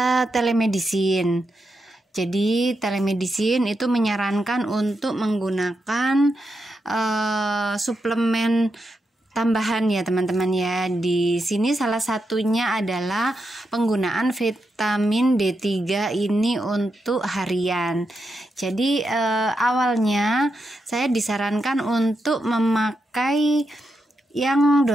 telemedicine. Jadi telemedicine itu menyarankan untuk menggunakan suplemen tambahan ya teman-teman ya. Di sini salah satunya adalah penggunaan vitamin D3 ini untuk harian. Jadi awalnya saya disarankan untuk memakai yang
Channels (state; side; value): normal; both; correlation 0.85